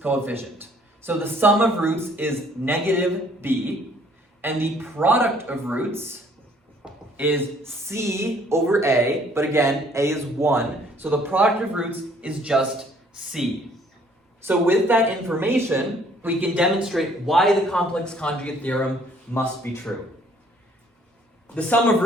So the sum of roots is negative b, and the product of roots is c over a, but again, a is 1, so the product of roots is just c. So with that information, we can demonstrate why the complex conjugate theorem must be true. The sum of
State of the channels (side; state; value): both; normal; correlation 0.60